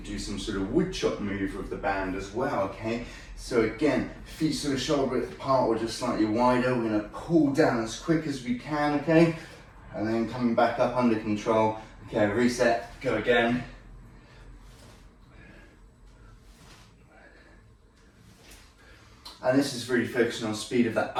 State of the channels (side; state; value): both; identical; correlation 1.00